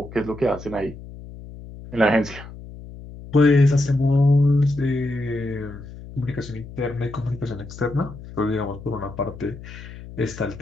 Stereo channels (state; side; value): noise; left; hum, 15 dB below the sound